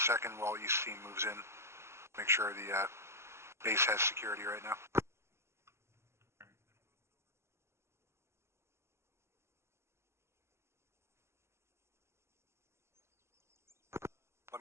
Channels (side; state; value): left; late; 0.13 ms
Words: second while East team moves in. Make sure the base has security right now. Let